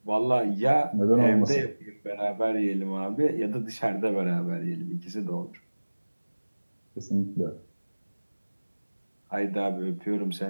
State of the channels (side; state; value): both; inverted; correlation -1.00